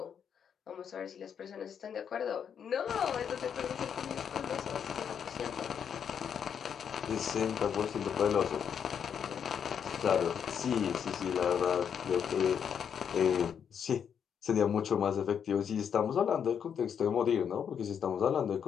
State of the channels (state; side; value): quieter; right; 7.8 dB